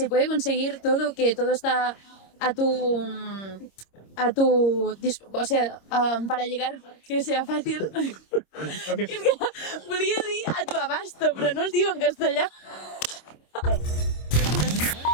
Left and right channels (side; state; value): right; late; 26 ms